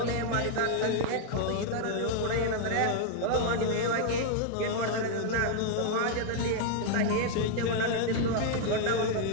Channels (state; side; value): different; both; correlation 0.00